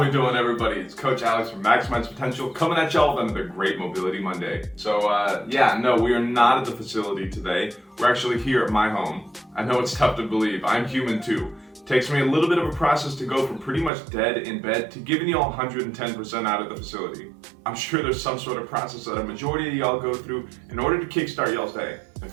we doing, everybody? It's Coach Alex from Maximize Potential coming at y'all with another great Mobility Monday. So, no, we are not at the facility today. We're actually here at my home. I know it's tough to believe. I'm human too. Takes me a little bit of a process to go from pretty much dead in bed to giving y'all 110% out of the facility. I'm sure there's some sort of process that a majority of y'all go through in order to kickstart y'all's day. And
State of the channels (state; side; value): drops out; left; at 13.9 s